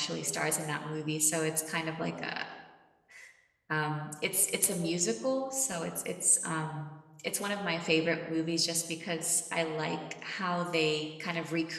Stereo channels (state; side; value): identical; both; correlation 1.00